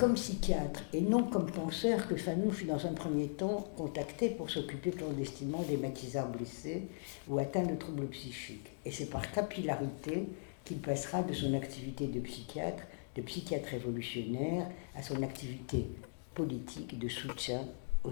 psychiatre et non comme penseur que Fanon fut dans un premier temps contacté pour s'occuper clandestinement des maquisards blessés ou atteints de troubles psychiques. Et c'est par capillarité qu'il passera de son activité de psychiatre révolutionnaire, à son activité politique de soutien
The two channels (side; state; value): right; silent; digital silence